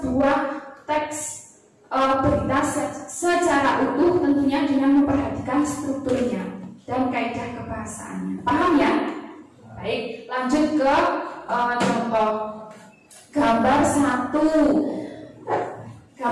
teks berita secara utuh, tentunya dengan memperhatikan strukturnya dan kaidah kebahasaannya. Paham, ya? Baik, lanjut ke contoh gambar 1.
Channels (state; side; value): identical; both; correlation 1.00